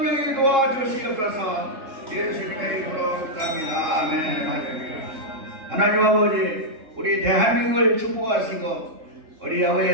도와주시옵소서. 예수님의 이름으로 갑니다. 아멘. 할렐루야. 하나님 아버지, 우리 대한민국을 축복하시고 우리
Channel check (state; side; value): late; left; 3.7 ms